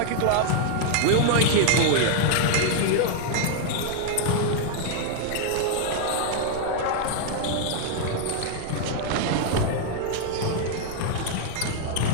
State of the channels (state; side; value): different; both; correlation 0.00